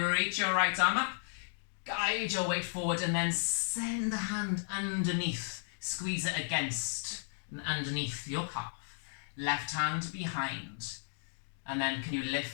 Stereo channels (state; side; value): silent; right; digital silence